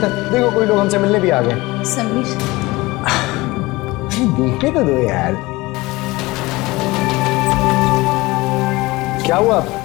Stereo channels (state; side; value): quieter; right; 21.2 dB